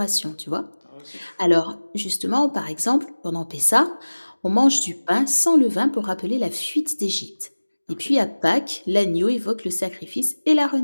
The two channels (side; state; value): both; inverted; correlation -1.00